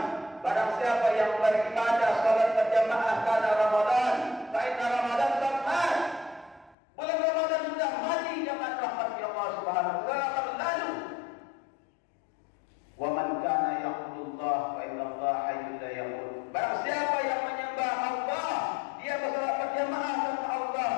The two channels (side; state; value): right; drops out; at 6.8 s